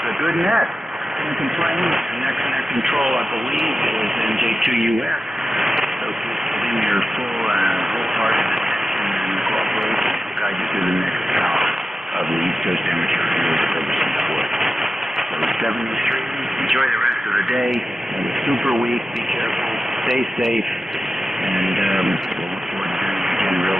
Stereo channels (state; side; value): normal; both; correlation 0.93